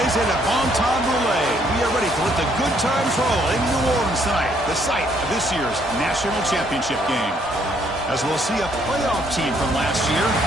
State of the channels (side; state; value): both; normal; correlation 0.68